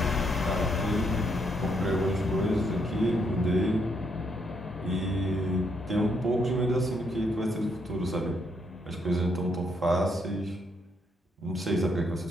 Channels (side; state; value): both; normal; correlation 0.75